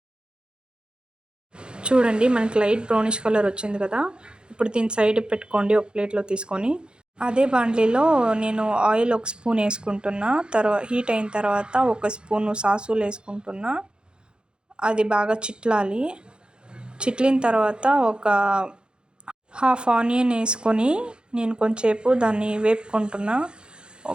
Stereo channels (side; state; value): left; late; 0.050 ms